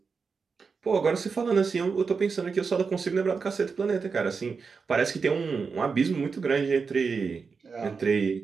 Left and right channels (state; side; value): quieter; left; 5.2 dB